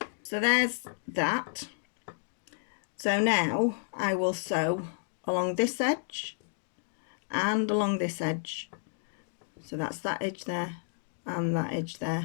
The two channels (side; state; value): right; silent; digital silence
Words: So there's that. So now I will sew along this edge and along this edge. So that's that edge there and that edge